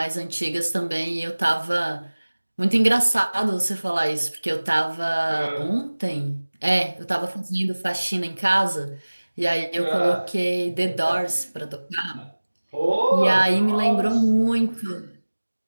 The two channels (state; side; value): inverted; both; correlation -1.00